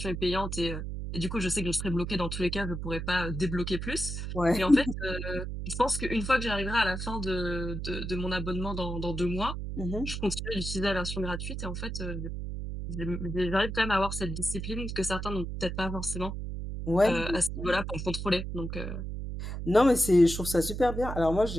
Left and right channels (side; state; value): right; noise; hum, 5 dB below the sound